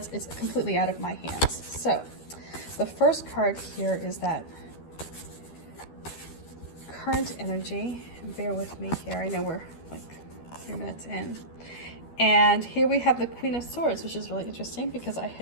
completely out of my hands. So the first card here is that current energy. Bear with me here. I know we're like 3 minutes in. And here we have the Queen of Swords, which is really interesting because I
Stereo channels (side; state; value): right; late; 12 ms